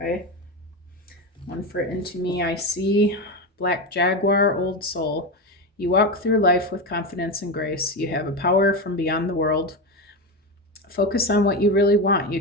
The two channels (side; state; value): both; normal; correlation 0.17